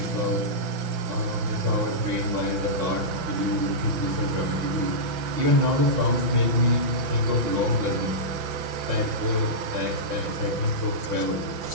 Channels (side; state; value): left; late; 5.9 ms